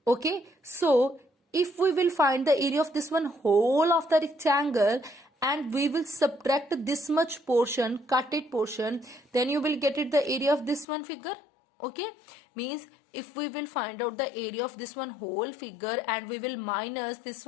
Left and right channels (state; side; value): drops out; right; at 10.9 s